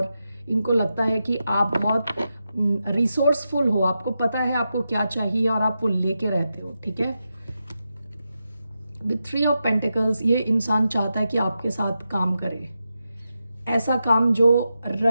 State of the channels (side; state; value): both; inverted; correlation -0.88